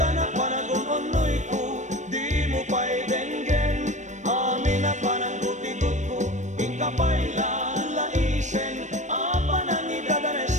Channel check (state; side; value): late; left; 0.35 ms